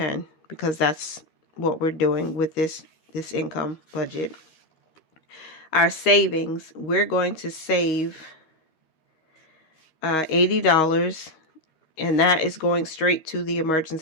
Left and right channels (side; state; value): right; late; 13 ms